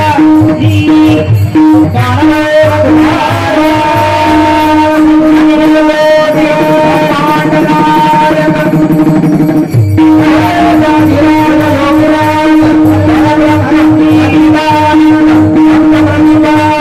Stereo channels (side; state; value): both; identical; correlation 1.00